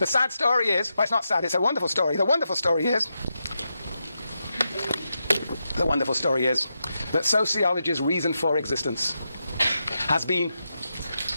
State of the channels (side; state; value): both; inverted; correlation -0.86